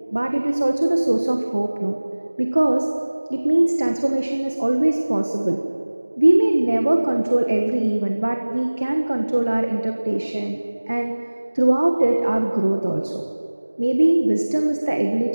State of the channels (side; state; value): both; inverted; correlation -1.00